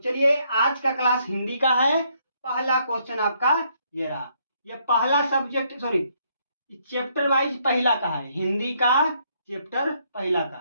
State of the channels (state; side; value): inverted; both; correlation -0.71